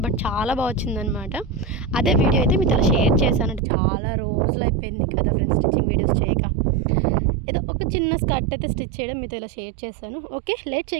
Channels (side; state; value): left; drops out; at 3.6 s